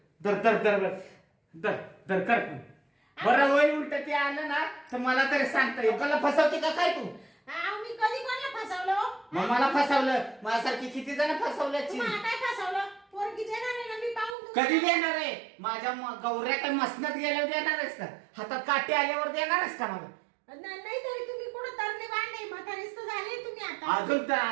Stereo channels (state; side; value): drops out; left; at 14.4 s